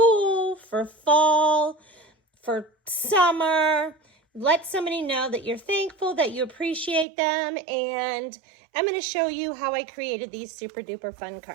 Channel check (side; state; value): left; drops out; at 7.1 s